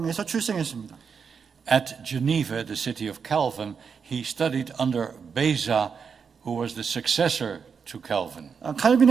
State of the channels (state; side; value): quieter; left; 6.2 dB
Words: 출생했습니다. At Geneva, the city of Calvin, he studied under Beza, who was the successor to Calvin.